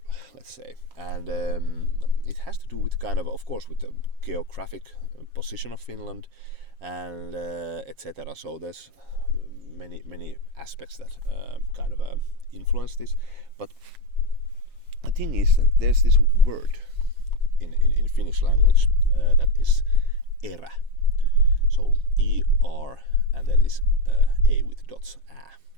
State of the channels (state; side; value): late; left; 7.3 ms